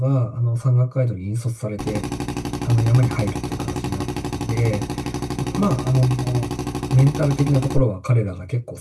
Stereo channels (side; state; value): both; identical; correlation 1.00